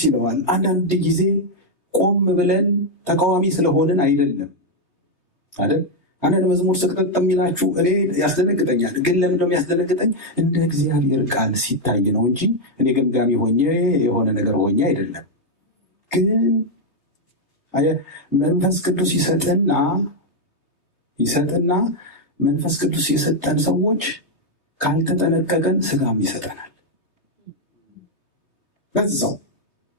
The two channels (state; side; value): late; right; 3.2 ms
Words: ይለዋል። አንዳንድ ጊዜ ቆም ብለን ተቃዋሚ ስለሆንን አይደለም አይደል? አንዳንድ መዝሙር ስቅጥጥ የሚላችሁ እኔ ያስደነግጠኛል። ግን ለምንድነው የሚያስደነግጠኝ? እንደ እግዚአብሔር ቃል ሲታይ ነው እንጂ እኔ ገምጋሚ ሆኜ የሆነ ነገር ሆኜ አይደለም። ግን መንፈስ ቅዱስ ይሰጥና መንፈስ ቅዱስ የሰጠን ሰዎች ካልተጠነቀቀን ስጋም ይሰጠናል።